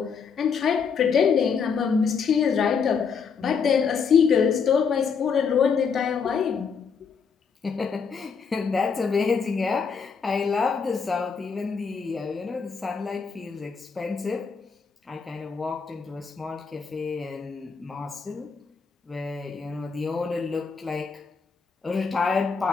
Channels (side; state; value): right; quieter; 5.9 dB